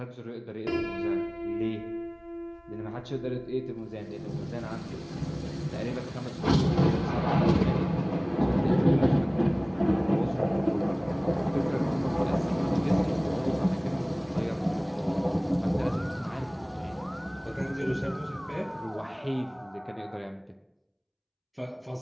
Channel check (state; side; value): identical; both; correlation 1.00